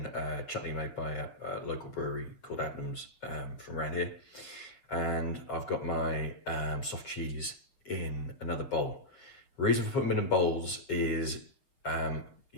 chutney made by a local brewery called Adnams from around here. And I've got my soft cheese in another bowl. The reason for putting them in bowls is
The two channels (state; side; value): late; right; 7.4 ms